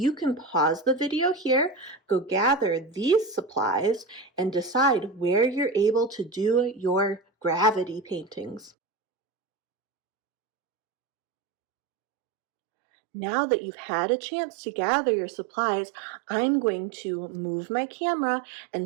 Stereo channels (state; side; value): drops out; left; at 8.7 s